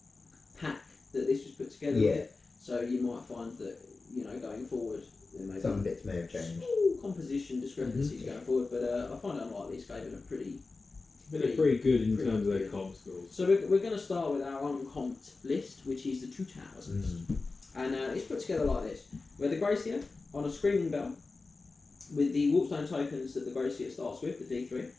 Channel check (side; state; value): right; quieter; 3.8 dB